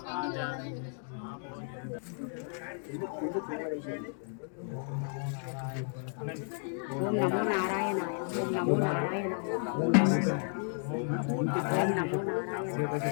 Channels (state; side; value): silent; right; 56 dB below the other